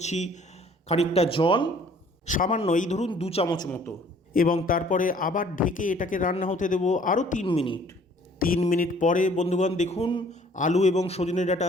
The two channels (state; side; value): normal; both; correlation 0.56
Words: খানিকটা জল, সামান্য, এই ধরুন 2 চামচ মতো, এবং তারপরে আবার ঢেকে এটাকে রান্না হতে দেব আরও 3 মিনিট। 3 মিনিট পরে বন্ধুগণ দেখুন আলু এবং সজনে ডাঁটা